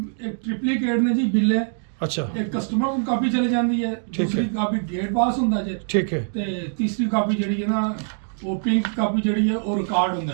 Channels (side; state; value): left; silent; digital silence